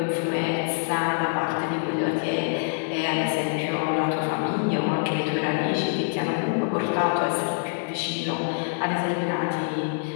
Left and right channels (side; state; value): right; silent; 61 dB below the other